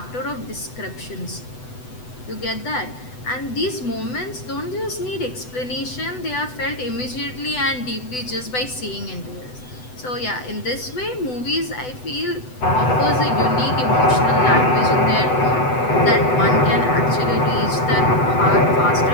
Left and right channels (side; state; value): right; late; 8.0 ms